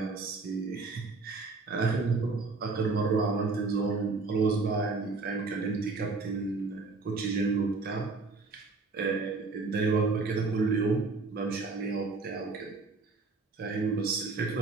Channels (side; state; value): left; quieter; 4.0 dB